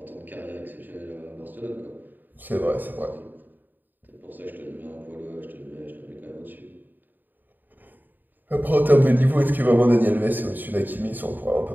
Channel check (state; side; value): late; left; 0.089 ms